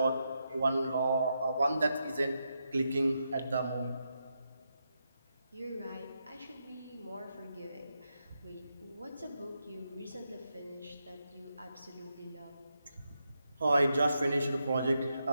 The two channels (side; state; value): both; inverted; correlation -0.85